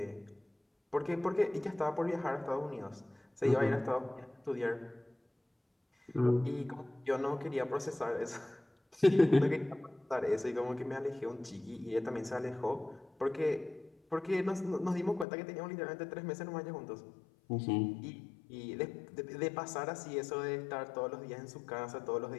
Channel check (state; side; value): drops out; right; at 15.2 s